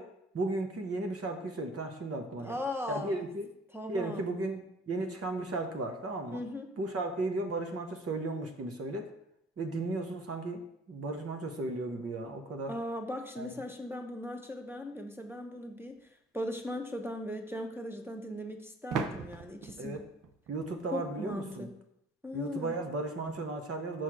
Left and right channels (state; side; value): normal; both; correlation 0.53